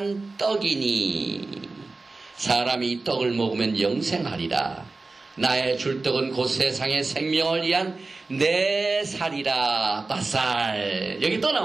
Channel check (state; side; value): quieter; left; 3.6 dB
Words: 떡이니 사람이 이 떡을 먹으면 영생하리라. 나의 줄 떡은 곧 세상의 생명을 위한 내 살이라. 바살. 여기 또